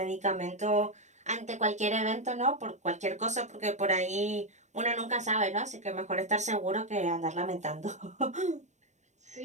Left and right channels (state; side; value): late; left; 0.34 ms